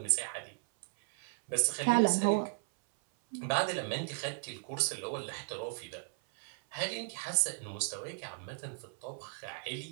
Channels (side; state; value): left; silent; 54 dB below the other